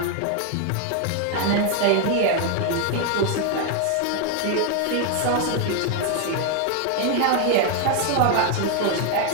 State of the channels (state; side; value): different; both; correlation 0.01